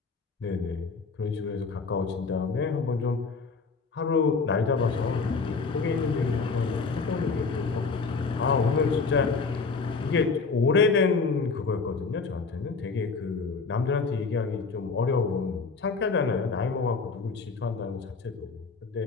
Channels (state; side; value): quieter; right; 4.6 dB